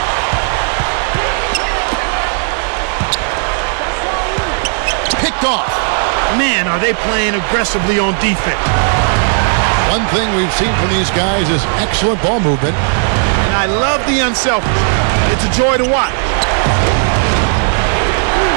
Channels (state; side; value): silent; left; 60 dB below the other